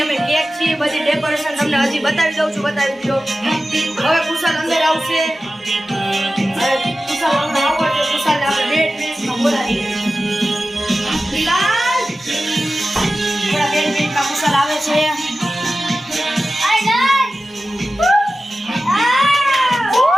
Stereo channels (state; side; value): normal; both; correlation 0.94